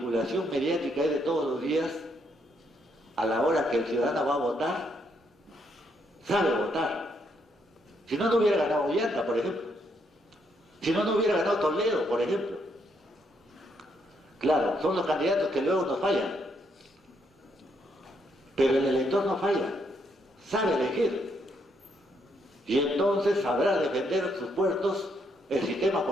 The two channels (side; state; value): both; normal; correlation 0.75